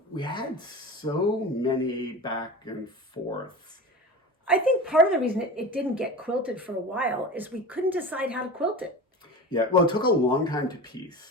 we had so many back and forths. I think part of the reason it didn't get quilted for a while is we couldn't decide how to quilt it. Yeah, well, it took a long time to piece.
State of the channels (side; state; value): both; normal; correlation 0.32